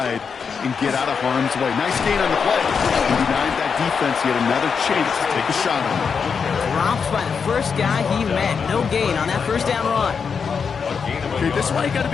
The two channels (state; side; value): quieter; right; 6.0 dB